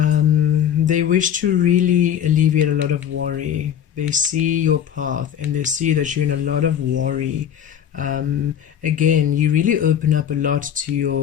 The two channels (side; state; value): right; quieter; 9.4 dB